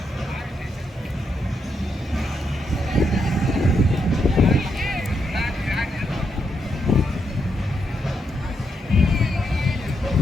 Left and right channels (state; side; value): normal; both; correlation 0.81